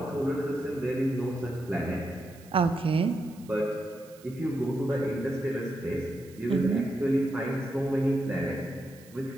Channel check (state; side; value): noise; right; hiss, 24 dB below the sound